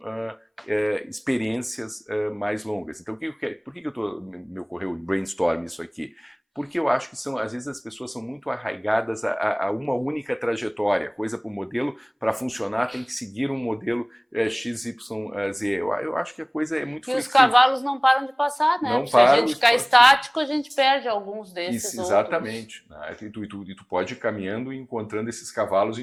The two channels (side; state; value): both; identical; correlation 1.00